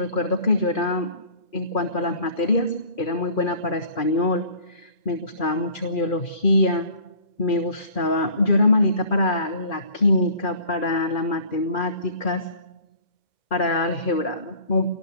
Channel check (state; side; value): late; right; 2.4 ms